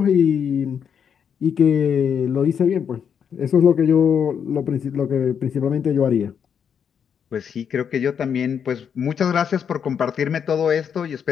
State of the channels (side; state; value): right; quieter; 7.6 dB